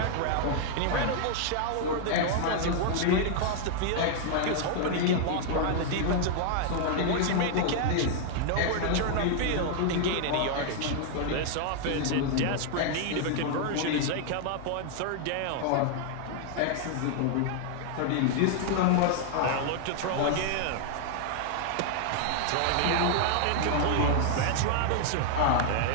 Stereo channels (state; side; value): different; both; correlation 0.00